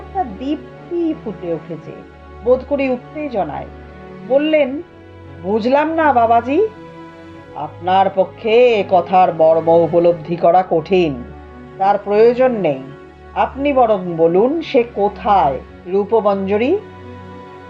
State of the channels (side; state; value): both; identical; correlation 1.00